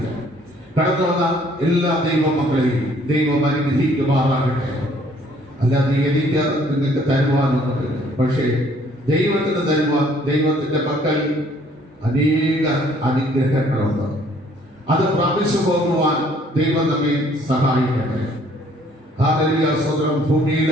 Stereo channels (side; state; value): both; normal; correlation 0.60